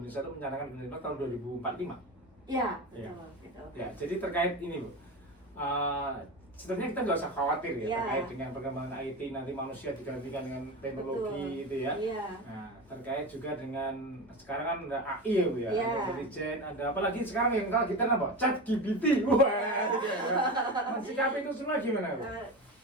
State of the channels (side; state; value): both; normal; correlation 0.24